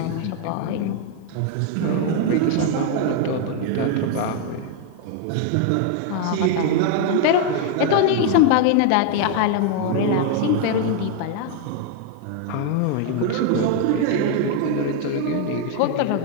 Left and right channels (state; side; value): different; both; correlation 0.00